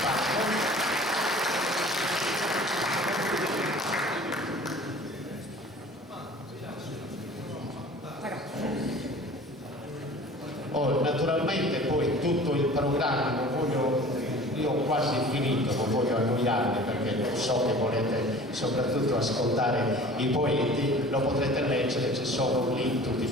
naturalmente poi tutto il programma, io ho quasi finito, non voglio annoiarvi perché so che volete soprattutto ascoltare i poeti, lo potrete leggere, ci sono lì tutti i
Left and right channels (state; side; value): normal; both; correlation 0.44